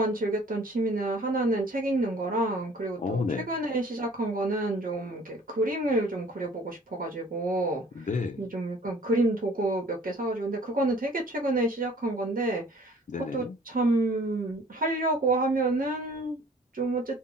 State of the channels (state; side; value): normal; both; correlation 0.53